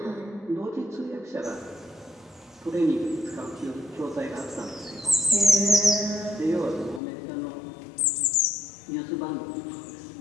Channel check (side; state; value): right; drops out; at 7.0 s